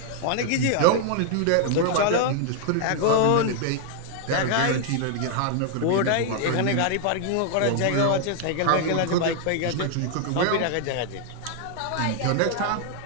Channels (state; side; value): different; both; correlation 0.00